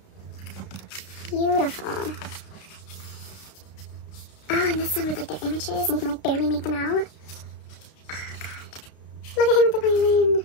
Beautiful. Oh, and this one with like their images, and you can like barely make them out. Oh god. Look at him with the violin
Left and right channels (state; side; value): late; right; 32 ms